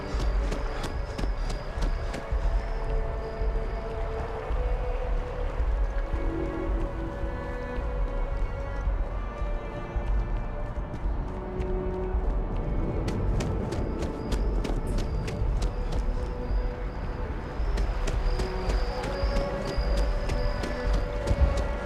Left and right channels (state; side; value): identical; both; correlation 1.00